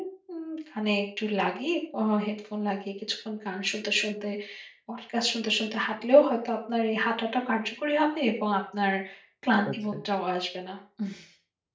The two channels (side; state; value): both; identical; correlation 1.00